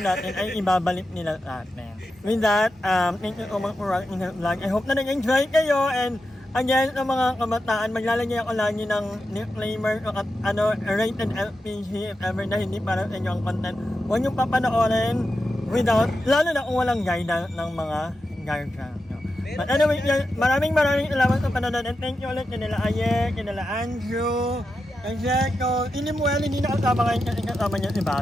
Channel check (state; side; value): normal; both; correlation 0.89